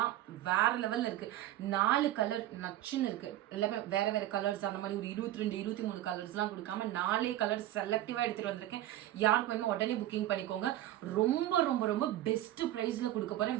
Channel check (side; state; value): left; quieter; 13.9 dB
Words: வேற லெவல்ல இருக்கு. 4 கலர் நச்சுன்னு இருக்கு. எல்லாமே வேற வேற கலர்ஸ், அந்த மாதிரி ஒரு 22 23 கலர்ஸ்லாம் கொடுக்காம 4 கலர் செலக்டிவா எடுத்துட்டு வந்திருக்கேன். யாருக்கு வேணுமோ உடனே புக்கிங் பண்ணிக்கோங்க. ரொம்ப ரொம்ப ரொம்ப பெஸ்ட் பிரைஸ்ல கொடுக்க